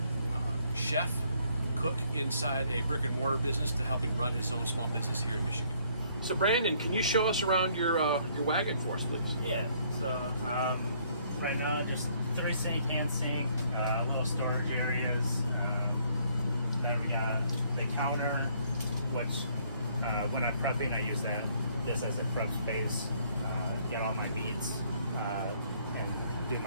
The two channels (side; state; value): both; inverted; correlation -0.65